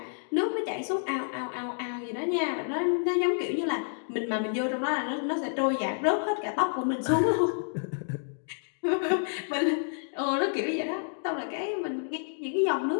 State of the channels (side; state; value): right; silent; digital silence